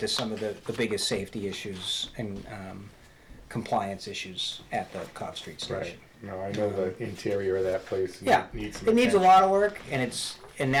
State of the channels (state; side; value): identical; both; correlation 1.00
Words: some of the biggest safety issues and compliance issues at the Cobb Street station. Right. No, I know the interior of that place. Yeah, needs some it needs a attention. lot of work, and